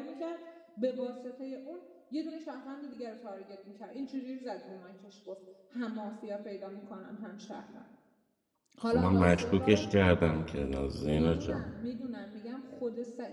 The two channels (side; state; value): both; identical; correlation 1.00